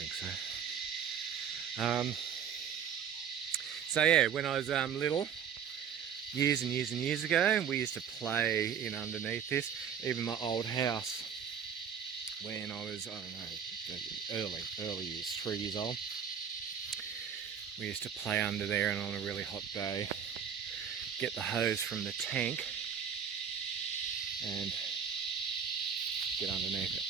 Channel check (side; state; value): left; quieter; 7.7 dB